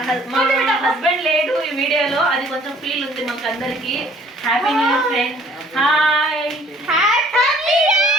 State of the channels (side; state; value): both; normal; correlation 0.56